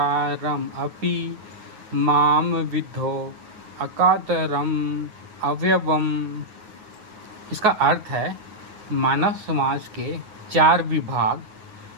अपि माम विद्धो अकातरम अव्यवम। इसका अर्थ है, मानव समाज के 4 विभाग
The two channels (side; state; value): left; late; 9.5 ms